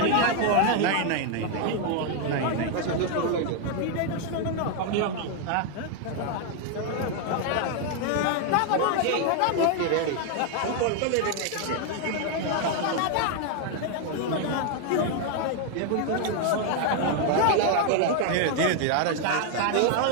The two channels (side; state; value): both; different; correlation 0.00